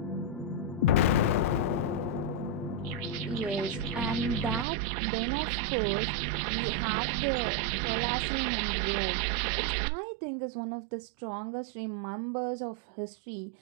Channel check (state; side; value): drops out; left; at 4.7 s